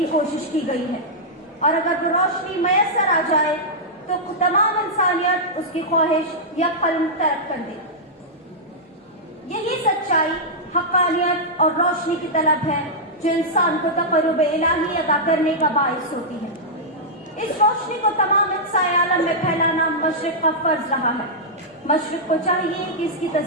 कोशिश की गई है, और अगर वो रोशनी मैसर आ जाए तो तमाम इंसानियत उसकी ख्वाहिश या कल्म तर्क कर दे। यही सच्चाई, हक़ानियत और रोशनी की तलब है जो इंसान को तक़र्रुब इलाही अदा करने का बाइस होती है। इस रोशनी को तमाम अक़साए आलम में फैलाना मशरिक़ का फर्ज रहा है। मशरिक़ को चाहिए कि इसकी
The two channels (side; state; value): both; normal; correlation -0.09